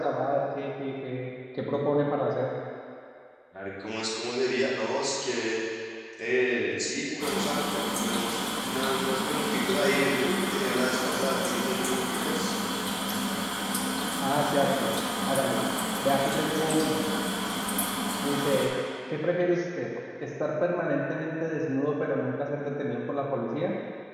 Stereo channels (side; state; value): both; identical; correlation 1.00